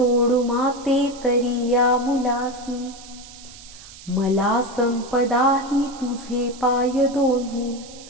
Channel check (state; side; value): noise; right; hiss, 18 dB below the sound